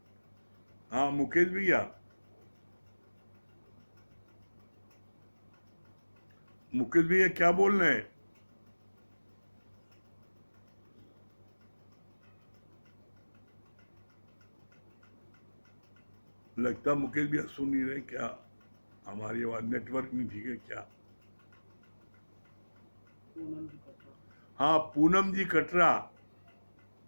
हाँ मुकेश भैया, मुकेश भैया क्या बोल रहे हैं? लगता मुकेश भैया सुन नहीं रहे क्या? हमारी आवाज नेटवर्क नहीं ठीक है क्या? हाँ पूनम जी कटरा,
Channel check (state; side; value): inverted; both; correlation -1.00